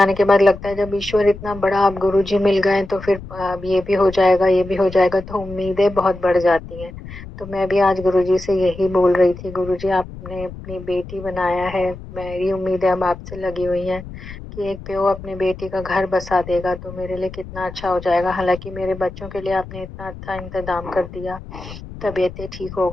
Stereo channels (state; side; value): noise; left; rumble, 13 dB below the sound